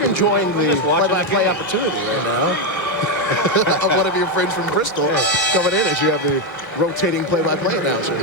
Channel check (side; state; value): right; late; 1.1 ms